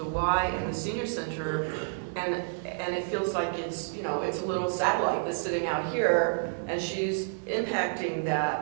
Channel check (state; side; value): silent; left; digital silence